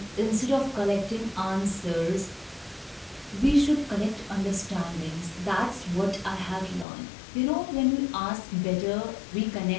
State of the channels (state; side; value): drops out; right; at 6.9 s